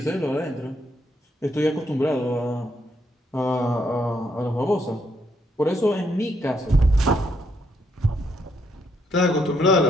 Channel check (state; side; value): normal; both; correlation 0.75